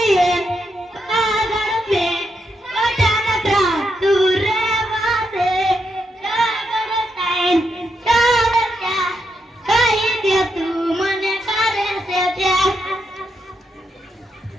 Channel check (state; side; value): normal; both; correlation 0.81